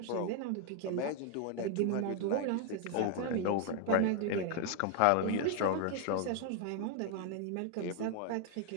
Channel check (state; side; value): different; both; correlation 0.00